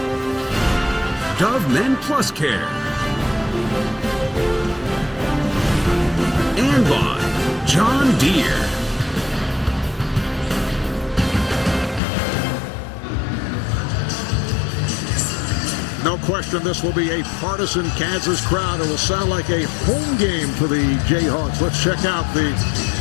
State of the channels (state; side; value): drops out; right; at 12.0 s